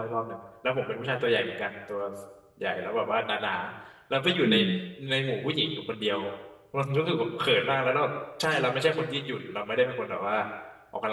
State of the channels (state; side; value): identical; both; correlation 1.00